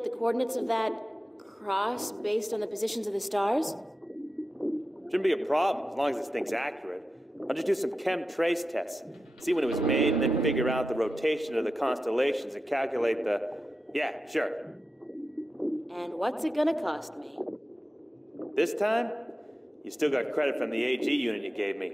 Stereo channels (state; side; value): normal; both; correlation 0.91